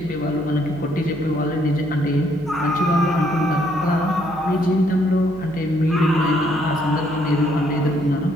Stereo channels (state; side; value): noise; right; hum, 19 dB below the sound